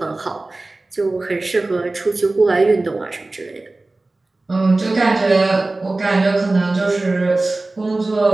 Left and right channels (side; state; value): left; quieter; 3.1 dB